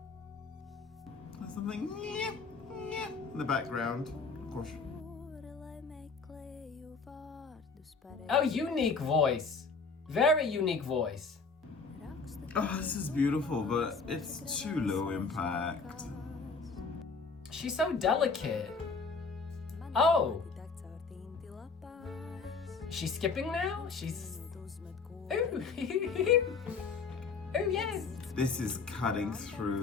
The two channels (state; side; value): quieter; right; 4.6 dB